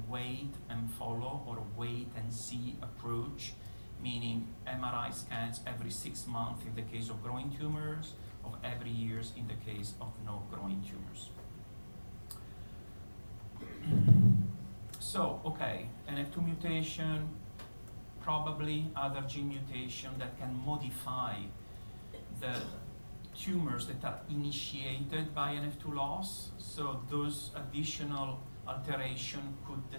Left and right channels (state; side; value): inverted; both; correlation -1.00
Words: wait and follow or wait and see approach, meaning MRI scans every 6 months in the case of growing tumors, of every year in the case of no growing tumors. So, okay, NF2 mutation, probably other gene mutation that can modify the tumors that are initiated by NF2 loss. So those additional alteration could